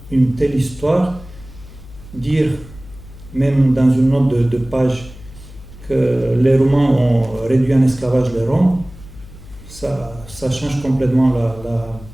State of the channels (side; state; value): left; noise; hum, 18 dB below the sound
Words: une telle histoire, dire, même dans une note de page, que les Roumains ont réduit en esclavage les Roms, ça change complètement la